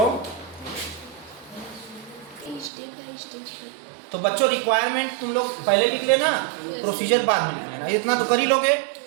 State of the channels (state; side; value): drops out; left; at 2.7 s